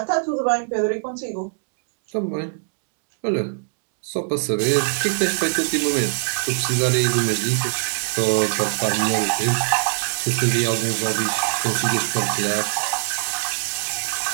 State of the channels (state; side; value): silent; left; digital silence